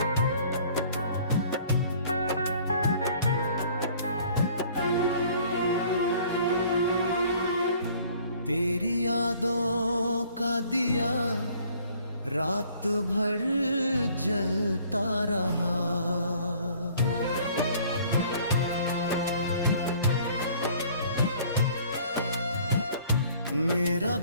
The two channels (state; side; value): inverted; both; correlation -0.55